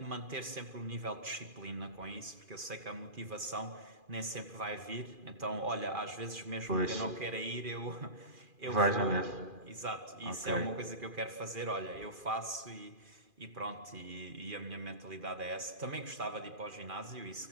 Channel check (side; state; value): left; late; 2.4 ms